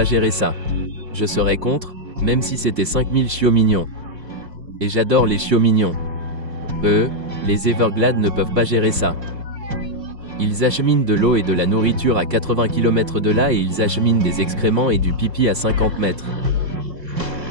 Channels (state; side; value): late; left; 3.5 ms